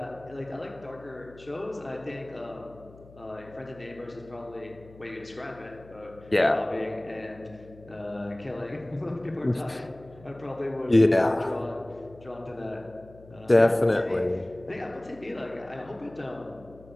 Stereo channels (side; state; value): left; noise; hum, 22 dB below the sound